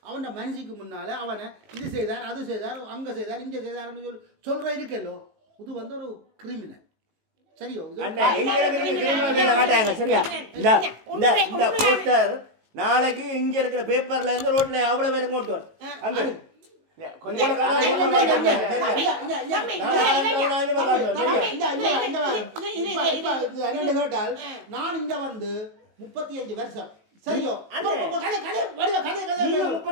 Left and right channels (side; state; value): left; late; 18 ms